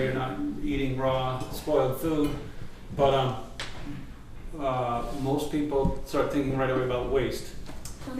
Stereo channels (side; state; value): both; identical; correlation 1.00